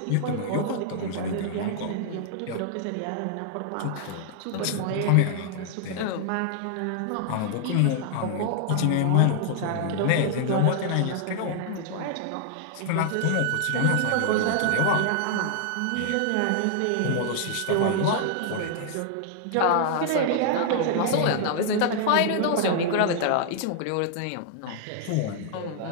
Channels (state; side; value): different; both; correlation 0.00